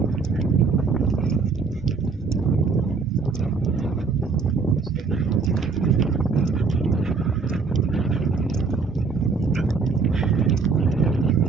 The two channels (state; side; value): quieter; left; 4.7 dB